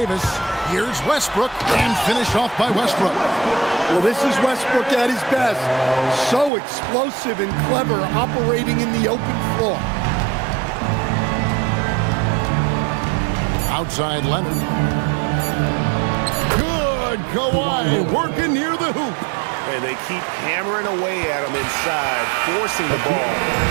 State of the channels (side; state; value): left; drops out; at 6.5 s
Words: Here's Westbrook and finished off by Westbrook. Well, this is Westbrook at his best. So explosive and clever, operating in the open floor. Outside Leonard. Good Kawhi working near the hoop. And they keep hammering away at him inside, forcing the ball